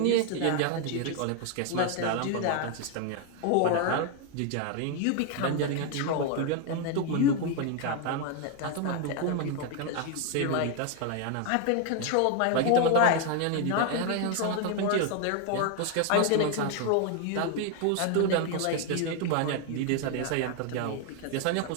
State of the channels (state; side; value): different; both; correlation 0.01